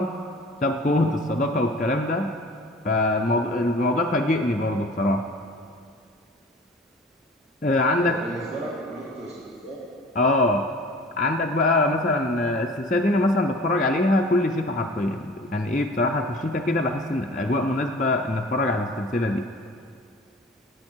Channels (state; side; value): normal; both; correlation 0.44